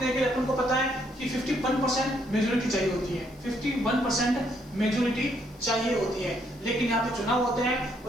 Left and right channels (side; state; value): left; noise; hiss, 29 dB below the sound